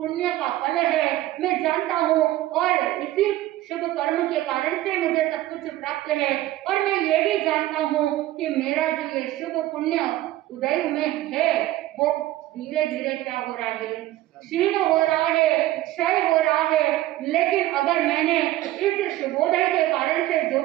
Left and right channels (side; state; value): left; quieter; 15.5 dB